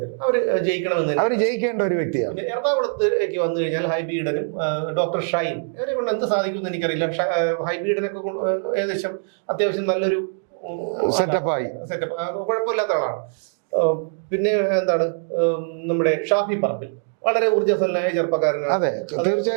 അവര് ജയിക്കണമെന്ന് അവര് ജയിക്കേണ്ട ഒരു വ്യക്തിയാണ്. പിന്നെ എറണാകുളത്തേക്ക് വന്നു കഴിഞ്ഞാൽ ഹൈബി ഈഡനും ഡോക്ടർ ഷൈൻ ഇവരെ കൊണ്ട് എന്ത് സാധിക്കുമെന്ന് എനിക്കറിയില്ല. ഹൈബി ഈഡനൊക്കെ ഏകദേശം അത്യാവശ്യം നല്ലൊരു സെറ്റപ്പായി, കുഴപ്പമില്ലാത്ത ആളാണ്. പിന്നെ എന്താണ് നമ്മുടെ ഷാഫി പറമ്പിൽ വളരെ ഊർജ്ജസ്വലനായ ചെറുപ്പക്കാരനാണ്. അതെ,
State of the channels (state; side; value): silent; left; digital silence